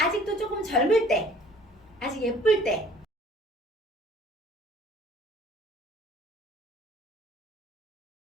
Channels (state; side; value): normal; both; correlation 0.52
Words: 조금 젊을 때, 아직 예쁠 때,